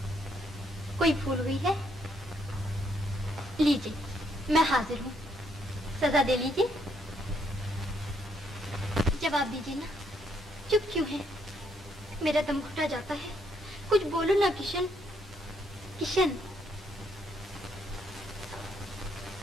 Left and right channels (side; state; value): both; normal; correlation 0.72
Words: कोई भूल हुई है? लीजिए, मैं हाजिर हूँ, सजा दे लीजिए। जवाब दीजिए ना, चुप क्यों है? मेरा दम घुटा जाता है। कुछ बोलो ना किशन। किशन,